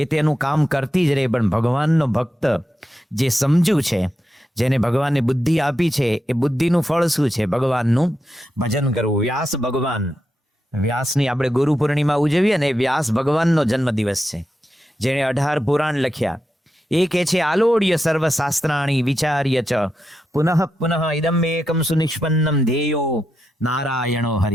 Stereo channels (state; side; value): normal; both; correlation 0.87